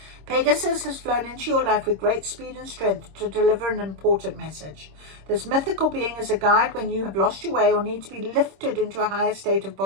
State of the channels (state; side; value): late; left; 26 ms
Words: Pegasus has flown into your life with great speed and strength to deliver an important message. This mythical being is a guide when you have lost your way or need to be lifted into a higher state of